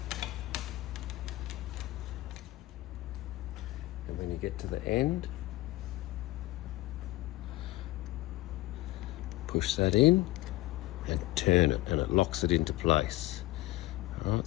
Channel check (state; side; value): quieter; right; 18.3 dB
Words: And when you get to the end, push that in and turn it, and it locks it into place. All right,